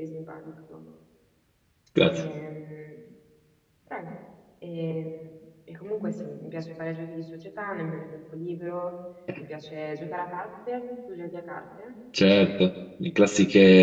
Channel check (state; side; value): identical; both; correlation 1.00